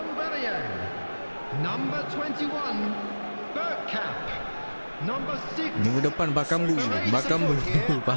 Number 21, Bergkamp. Number 6, Minggu depan Bakambu. Bakambu.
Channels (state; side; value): inverted; both; correlation -1.00